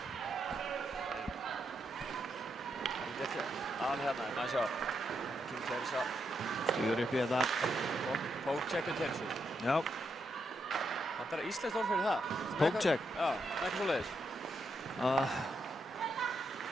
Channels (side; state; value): both; normal; correlation 0.81